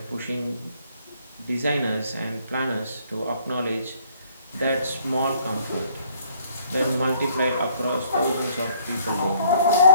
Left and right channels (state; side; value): inverted; both; correlation -0.61